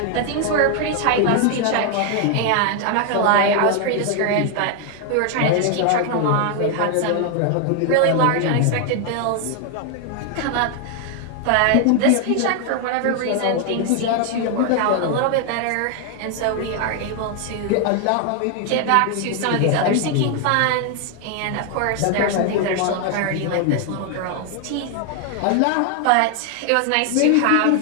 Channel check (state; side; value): different; both; correlation 0.00